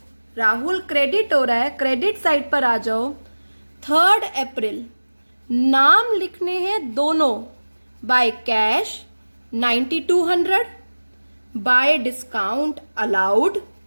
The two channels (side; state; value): both; inverted; correlation -1.00